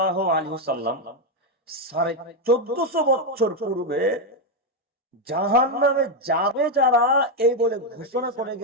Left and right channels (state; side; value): normal; both; correlation 0.04